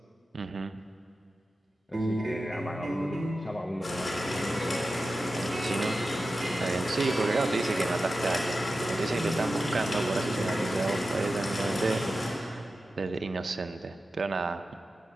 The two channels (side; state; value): both; normal; correlation 0.93